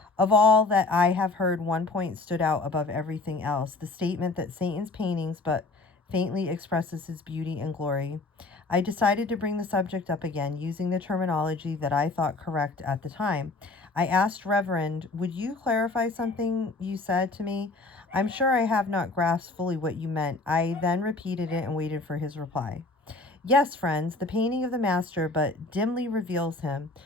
Of all that I have heard, one point stood out above everything else, the statement that Satan's paintings but faintly expresses his beauty and glory. I decided to bring the subject up again, using the terminology that I thought correct at the time. I asked Reverend, would you clarify something you said to me? I'm sure I have not grasped fully what you meant. I then repeated it and waited for his reply. Yes, friends, the painting of the master but dimly reveals him.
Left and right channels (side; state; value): right; quieter; 3.4 dB